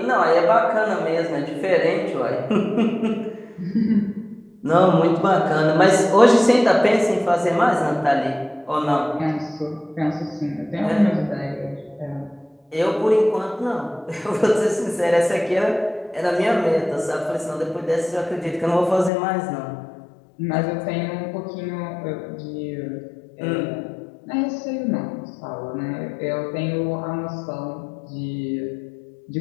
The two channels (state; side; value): drops out; right; at 19.1 s